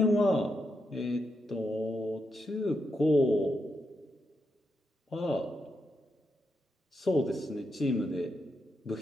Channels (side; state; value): both; normal; correlation 0.83